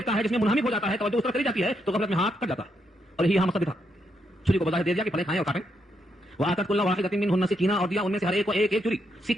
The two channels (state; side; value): normal; both; correlation 0.79